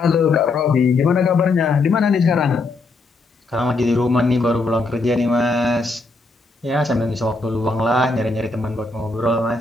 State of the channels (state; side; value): quieter; right; 3.5 dB